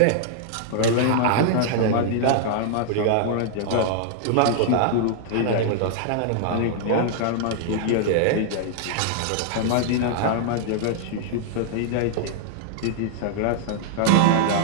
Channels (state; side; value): different; both; correlation -0.01